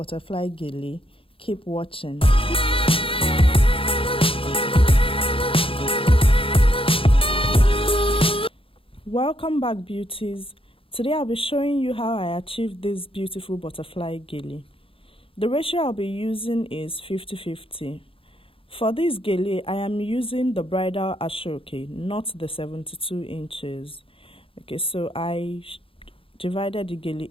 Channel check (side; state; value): right; late; 0.26 ms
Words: gele, keep watching. Welcome back, beauties. Today I'll be showing you how I achieved this beautiful butterfly gele. The ratio I'll be using is 50-50. For this gele, I am using the bridal ashoke, not the 72 inches. Okay, so I divided the gele